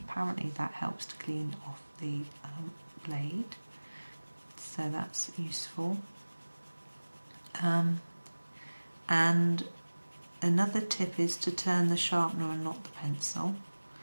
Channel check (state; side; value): inverted; both; correlation -1.00